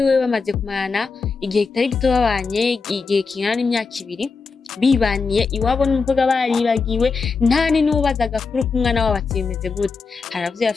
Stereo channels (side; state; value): right; quieter; 4.7 dB